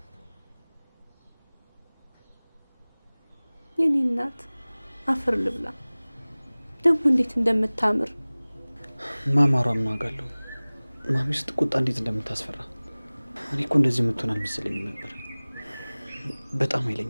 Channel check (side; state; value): both; inverted; correlation -1.00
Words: የኔ እናት አፈር ልብላ ደግሞ እንዴት እንደምታምር ማማሯ ምን አውቃለሁ ማሚ ስትቆጣ እንዴት እንደምታስፈራ እኔ እኮ እንደዚህ የምትሆን አልመሰለኝም ነበር በጣም